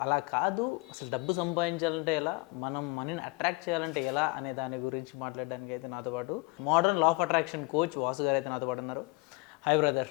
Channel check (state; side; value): quieter; right; 27.3 dB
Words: అలా కాదు, అసలు డబ్బు సంపాదించాలంటే ఎలా, మనం మనీని అట్రాక్ట్ చేయాలంటే ఎలా అనే దాని గురించి మాట్లాడడానికి అయితే నాతో పాటు modern law of attraction coach Vasu గారు అయితే నాతో పాటు ఉన్నారు. Hi